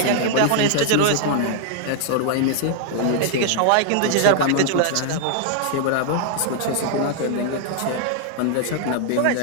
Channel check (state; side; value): different; both; correlation 0.00